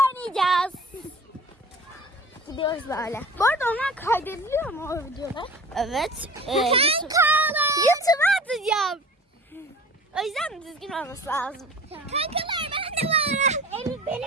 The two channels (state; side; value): normal; both; correlation 0.42